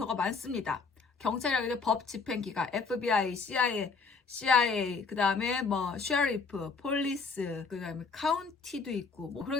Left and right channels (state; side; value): quieter; right; 4.7 dB